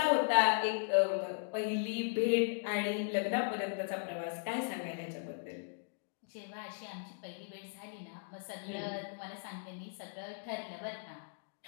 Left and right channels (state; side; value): silent; right; digital silence